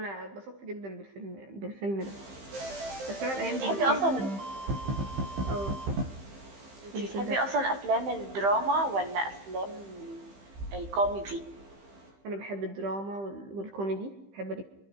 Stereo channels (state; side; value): late; left; 15 ms